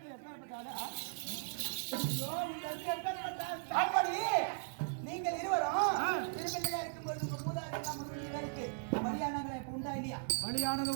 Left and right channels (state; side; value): silent; left; digital silence